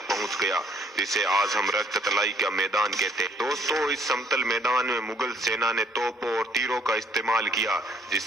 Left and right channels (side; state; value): both; normal; correlation 0.63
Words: पहुंच गया, जिसे आज हम रक्त तलाई का मैदान कहते हैं। दोस्तों, इस समतल मैदान में मुगल सेना ने तोपों और तीरों का इस्तेमाल किया,